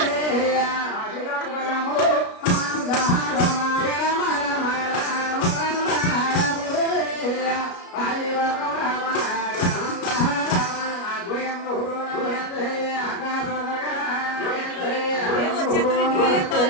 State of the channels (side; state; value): right; late; 33 ms